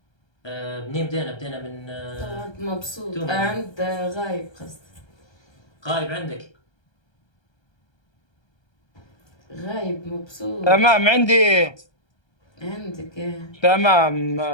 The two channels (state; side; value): late; right; 1.3 ms